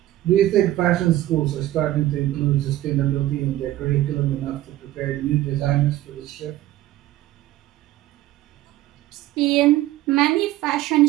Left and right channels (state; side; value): quieter; left; 15.0 dB